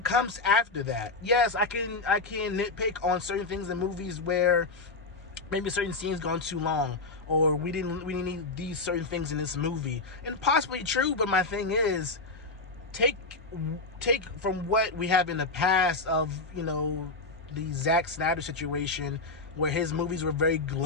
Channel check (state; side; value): quieter; right; 3.6 dB